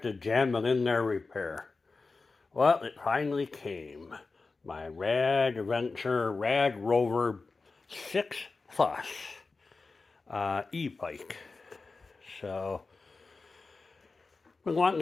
to Jamming in There Repair. Well, it finally came. My RadRover 6 Plus e-bike. So, been wanting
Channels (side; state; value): right; quieter; 4.0 dB